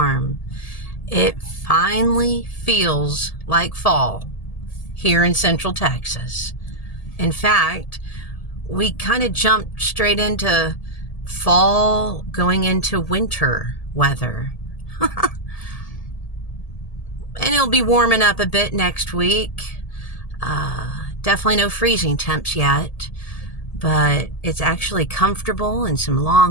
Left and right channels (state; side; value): late; right; 1.8 ms